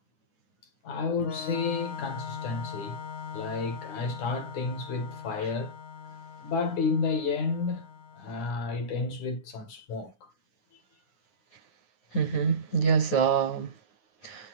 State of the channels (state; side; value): late; right; 9.7 ms